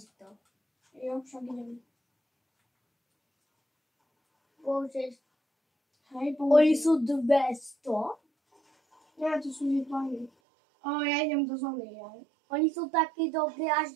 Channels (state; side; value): drops out; left; at 10.3 s